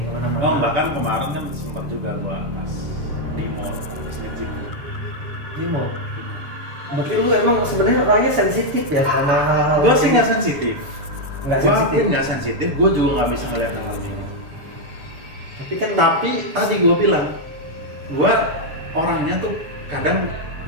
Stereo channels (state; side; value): late; left; 6.9 ms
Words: kemana-mana. Oh, bahkan kemarin kan sempat juga gua pas di mall habis nge-gym. Di mall. Berarti lu emang sebenarnya orangnya sensitif ya sama hal-hal. Gua sih nggak sensitif. Nggak Gua sensitif. akuin nggak sensitif. Gua juga nggak bisa ngeliat hal kayak gitu. Tapi Tadi gua bilang, gua orangnya tuh kadang